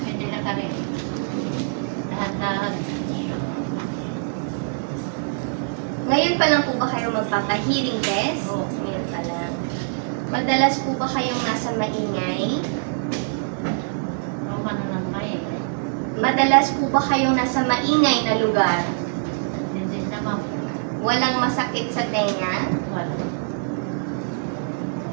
Hindi na kami. Dahan-dahan. Ngayon pa lang po ba kayo magpapa-hearing test? Oo. Ngayon pa lang. Madalas po ba kayong nasa maingay? Ang ano ng maingay? Madalas po ba kayong nasa maingay na lugar? Hindi naman. Walang masakit sa tenga? Wala.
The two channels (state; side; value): silent; left; digital silence